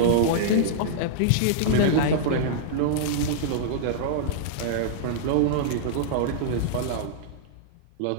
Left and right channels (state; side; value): different; both; correlation -0.02